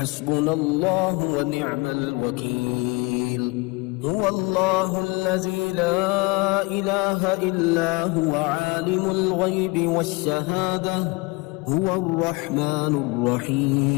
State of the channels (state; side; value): quieter; right; 26.0 dB